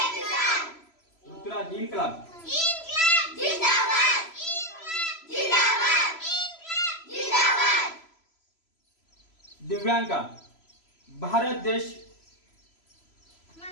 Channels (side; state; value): right; late; 3.0 ms